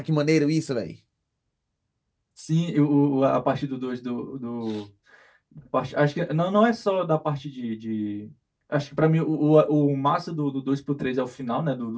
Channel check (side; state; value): both; identical; correlation 1.00